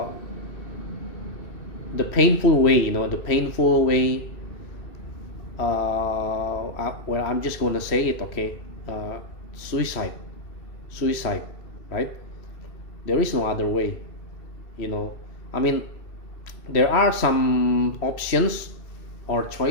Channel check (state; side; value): late; right; 3.1 ms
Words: the painful way, well, I'm just gonna say it, okay? Suicide. Suicide, right? There is no other way, I mean, there are some options or